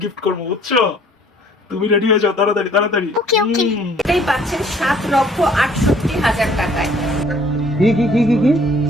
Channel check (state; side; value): normal; both; correlation 0.58